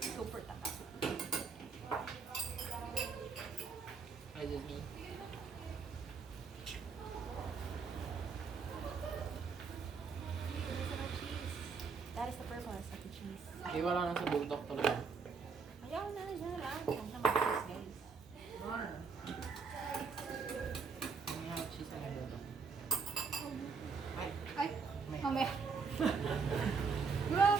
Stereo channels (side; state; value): left; quieter; 5.3 dB